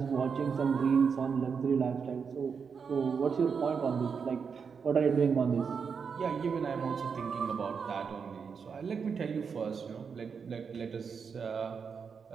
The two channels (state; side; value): quieter; left; 6.0 dB